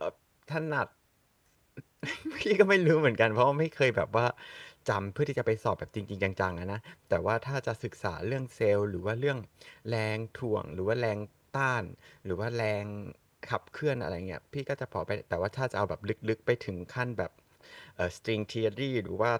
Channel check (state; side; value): identical; both; correlation 1.00